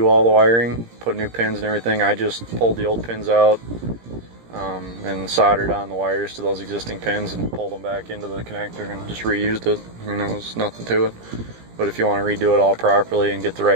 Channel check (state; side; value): late; left; 17 ms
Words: all the wiring, put new pins and everything, I just pulled the old pins out and soldered on the wires to those existing pins and pulled them back into the connector and just reused it. I mean, there was nothing to it. But if you want to redo it all properly and get the